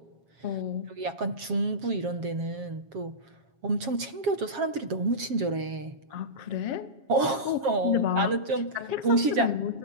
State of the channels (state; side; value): late; left; 7.4 ms